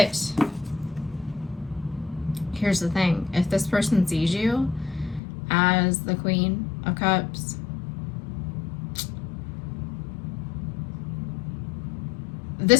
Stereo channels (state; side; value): drops out; right; at 5.2 s